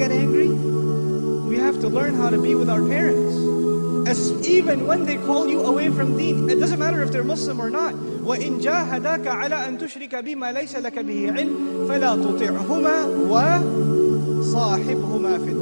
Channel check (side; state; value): both; inverted; correlation -1.00